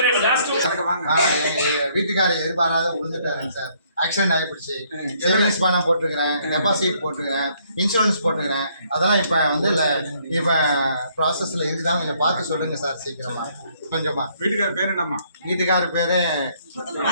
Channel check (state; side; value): inverted; both; correlation -0.67